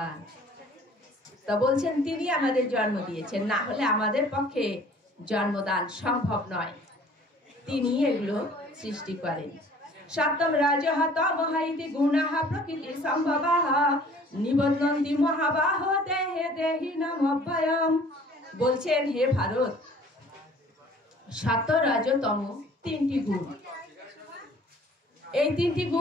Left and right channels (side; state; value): both; normal; correlation 0.52